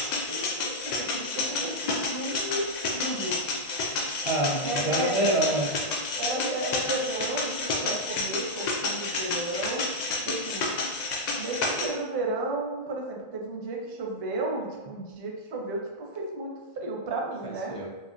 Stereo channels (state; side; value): late; right; 2.0 ms